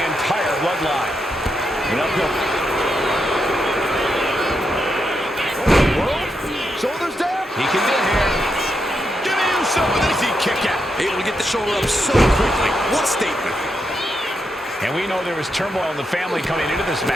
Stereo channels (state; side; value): normal; both; correlation 0.83